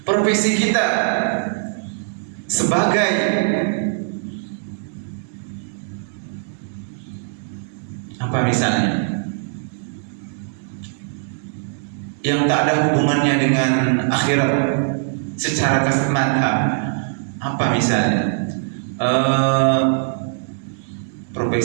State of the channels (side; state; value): left; silent; 65 dB below the other